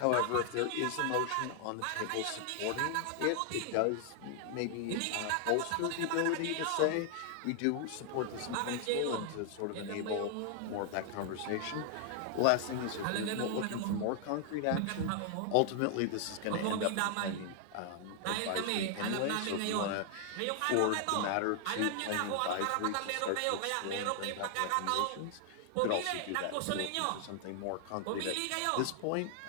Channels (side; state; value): both; different; correlation 0.00